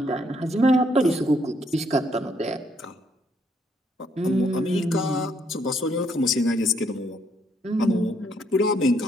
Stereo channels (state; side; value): normal; both; correlation 0.71